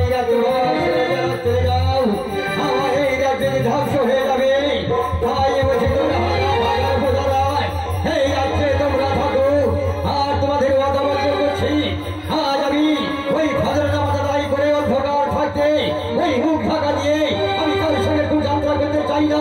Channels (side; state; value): both; identical; correlation 1.00